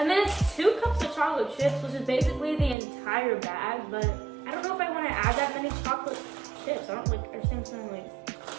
then it's 2 cups of chocolate chips, which is basically the entire bag, but I don't know if I want to add that many chocolate chips. I don't understand what's going on.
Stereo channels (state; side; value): drops out; left; at 2.8 s